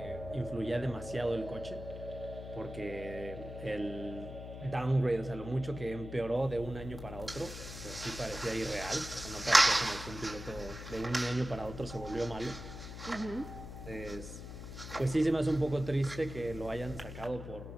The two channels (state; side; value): noise; left; hum, 10 dB below the sound